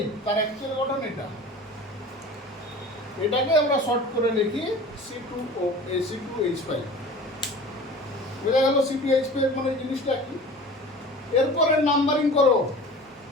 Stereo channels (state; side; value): normal; both; correlation 0.39